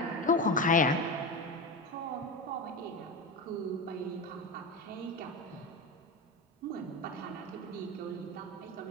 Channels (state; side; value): normal; both; correlation 0.22